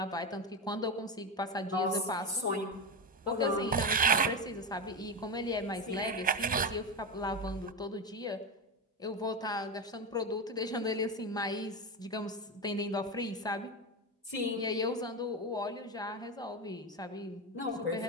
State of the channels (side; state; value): both; normal; correlation 0.15